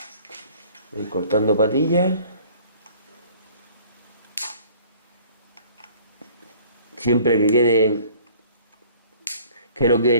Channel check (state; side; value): inverted; both; correlation -0.52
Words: Voy cortando patillas. Siempre que no quede